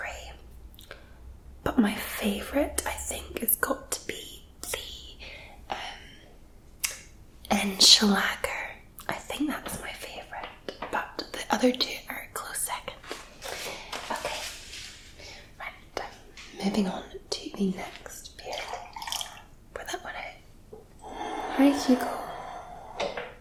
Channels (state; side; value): identical; both; correlation 1.00